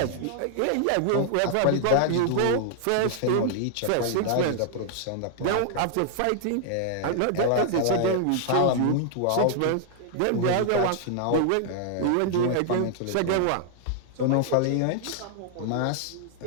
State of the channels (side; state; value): both; different; correlation 0.00